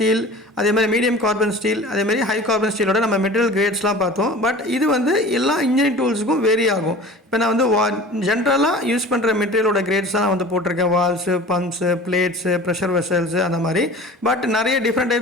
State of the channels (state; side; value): normal; both; correlation 0.40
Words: அதே மாதிரி மீடியம் கார்பன் ஸ்டீல், அதே மாதிரி ஹை கார்பன் ஸ்டீலோட நம்ம மெட்டீரியல் கிரேட்ஸ்லாம் பார்த்தோம். பட் இது வந்து எல்லா இன்ஜினியரிங் டூல்ஸுக்கும் வேரி ஆகும். இப்போ நான் வந்து ஜென்ரலாக யூஸ் பண்ணுற மெட்டீரியலோட கிரேட்ஸ் தான் நான் வந்து போட்டிருக்கேன். Valves, pumps, plates, pressure vessels, அந்த மாதிரி. பட் நிறைய டிஃப்ரெண்ட்